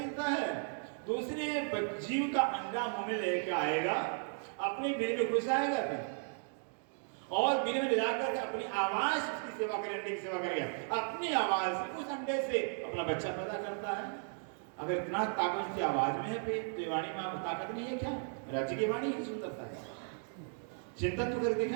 देता है, दूसरे जीव का अंडा मुंह में लेके आएगा, अपने बिल में घुस आएगा फिर, और बिल में ले जाकर अपनी आवाज उसकी सेवा करे, अंडे की सेवा करेगा। अपनी आवाज से उस अंडे से अपना बच्चा पैदा करता है। अगर इतना ताकत की आवाज में है तो ये वाणी में ताकत नहीं है क्या? राज्य की वाणी की सुंदरता है। चिंतन तो कर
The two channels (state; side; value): silent; left; 54 dB below the other